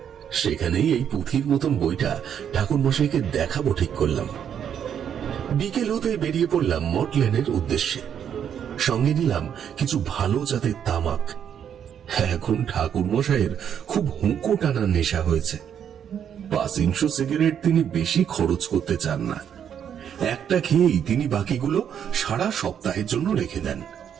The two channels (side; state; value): left; quieter; 8.7 dB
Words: সেখানেই এই পুঁথির মতন বইটা ঠাকুর মশাইকে দেখাবো ঠিক করলাম। বিকেল হতে বেরিয়ে পড়লাম মঠ লেনের উদ্দেশ্যে। সঙ্গে নিলাম কিছু ভালো জাতের তামাক। এখন ঠাকুর মশাইয়ের খুব হুঁকো টানার নেশা হয়েছে। 500 সিগারেট তিনি বেশি খরচ করতে চান না। একটা খেয়েই তিনি বাকিগুলো সারা সপ্তাহের জন্য রেখে দেন।